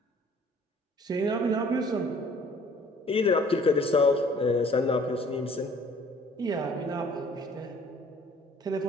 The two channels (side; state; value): both; normal; correlation 0.55